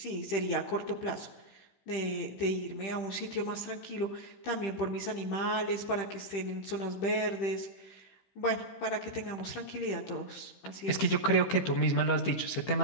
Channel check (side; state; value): right; late; 15 ms